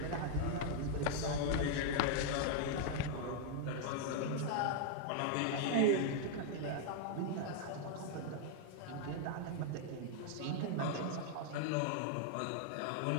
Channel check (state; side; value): different; both; correlation 0.00